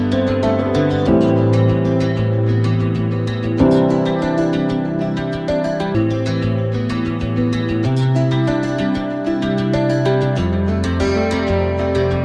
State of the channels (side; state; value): both; identical; correlation 1.00